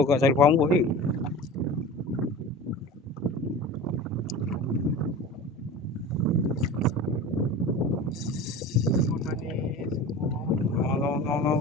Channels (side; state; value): both; normal; correlation 0.34